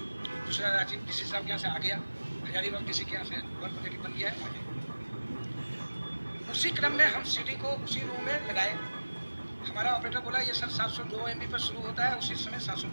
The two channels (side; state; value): both; inverted; correlation -1.00